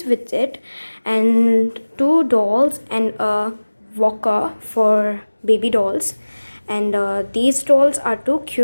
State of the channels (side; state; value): both; inverted; correlation -1.00